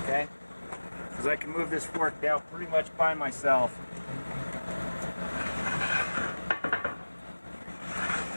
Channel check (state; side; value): inverted; both; correlation -1.00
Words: Okay? because I can move this fork out pretty much by myself.